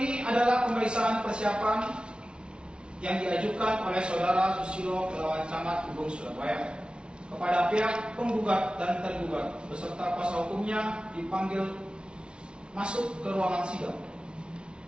adalah pemeriksaan persiapan yang diajukan oleh Saudara Susilo melawan Camat Kubung Surabaya kepada pihak penggugat dan tergugat beserta kuasa hukumnya dipanggil masuk ke ruangan sidang.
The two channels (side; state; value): left; late; 0.057 ms